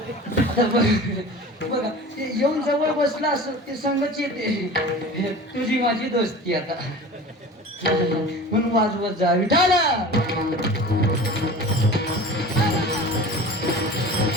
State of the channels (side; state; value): both; normal; correlation 0.38